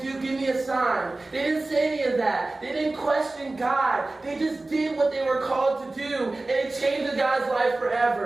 give me a sign. They didn't say any of that. They didn't question God. They just did what they were called to do. And it changed the guy's life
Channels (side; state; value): left; quieter; 3.1 dB